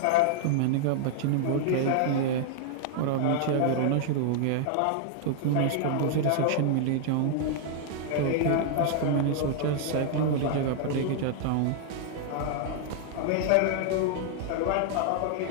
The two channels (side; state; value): both; different; correlation 0.00